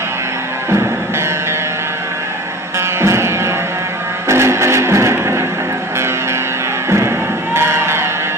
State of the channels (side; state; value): both; normal; correlation 0.39